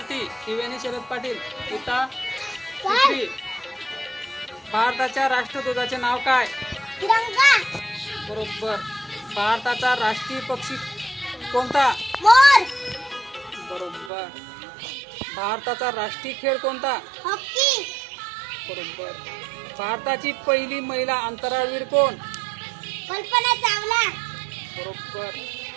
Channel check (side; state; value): left; drops out; at 14.1 s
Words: त्रिवेणी शरद पाटील इता तिसरी। भारताच्या राष्ट्रध्वजाचे नाव काय? तिरंगा। बरोबर। भारताचा राष्ट्रीय पक्षी कोणता? मोर। बरोबर। भारताचा राष्ट्रीय खेळ कोणता? हॉकी। बरोबर। भारताची पहिली महिला अंतराळवीर कोण? कल्पना चावला। बरोबर।